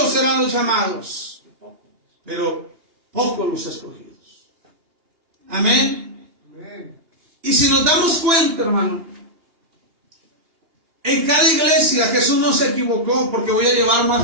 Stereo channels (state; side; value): late; left; 2.8 ms